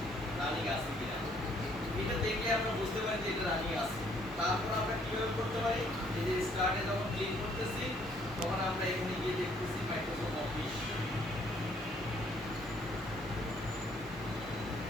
রানিং আছে কিনা এটা দেখে আমরা বুঝতে পারি যে এটা রানিং আছে তারপর আমরা কিভাবে করতে পারি এই যে স্টার্টে যখন ক্লিক করতেছি তখন আমরা এখানে গিয়ে দেখতেছি মাইক্রোসফট অফিস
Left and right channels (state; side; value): normal; both; correlation 0.65